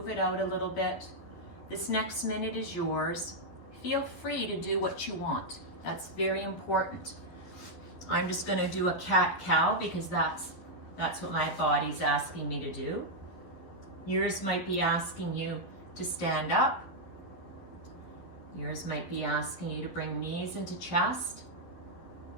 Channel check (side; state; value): right; late; 11 ms